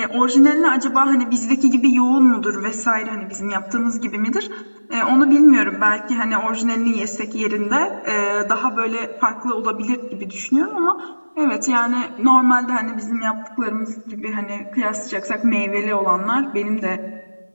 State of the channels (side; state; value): both; inverted; correlation -1.00